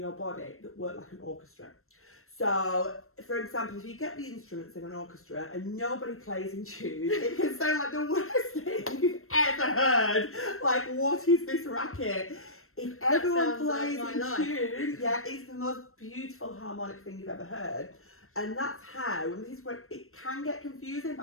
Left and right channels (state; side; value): late; right; 0.62 ms